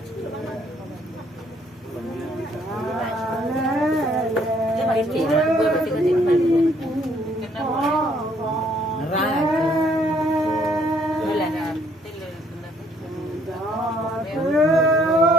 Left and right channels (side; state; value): both; normal; correlation 0.65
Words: cái bài chị nó vừa mới cái gì mà ra đây là